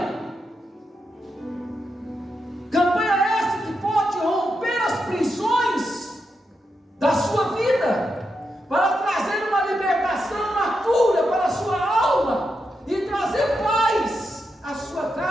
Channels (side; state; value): both; normal; correlation 0.85